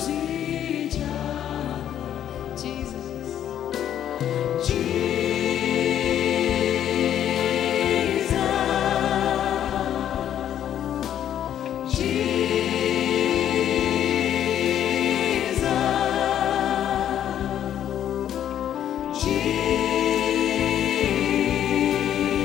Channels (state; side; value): quieter; right; 10.4 dB